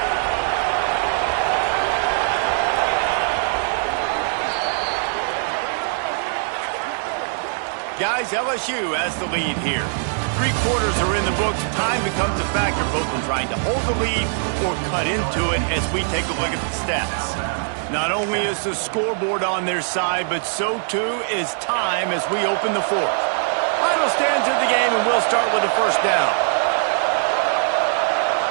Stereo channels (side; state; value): left; silent; digital silence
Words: Guys, LSU has the lead here. 3 quarters are in the books. Time becomes a factor both in trying to hold the lead or cut into it as we take a look at the stats. Not only is the scoreboard on their side, but so too is time as we open the 4th. Final stands of the game, and we'll start with a first down.